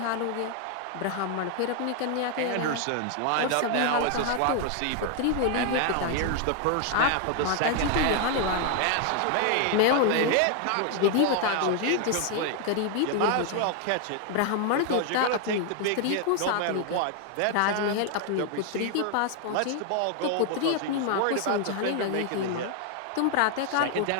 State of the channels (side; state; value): both; different; correlation 0.00